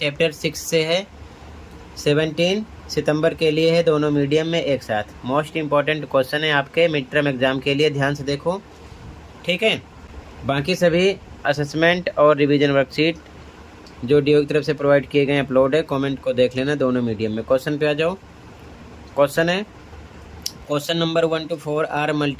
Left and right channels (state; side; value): identical; both; correlation 1.00